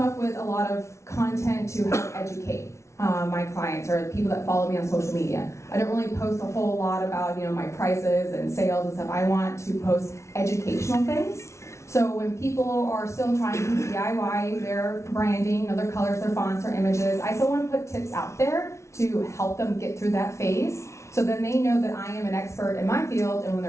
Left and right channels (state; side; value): late; right; 0.13 ms